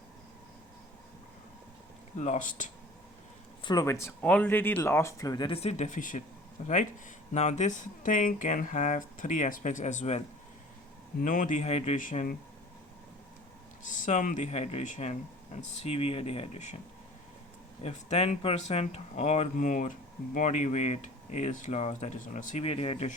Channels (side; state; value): both; normal; correlation 0.44